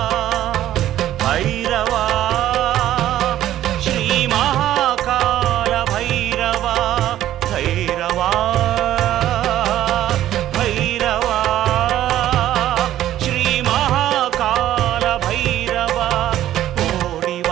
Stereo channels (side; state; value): left; quieter; 12.8 dB